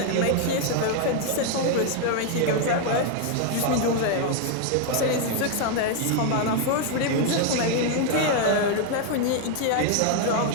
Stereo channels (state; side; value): different; both; correlation 0.01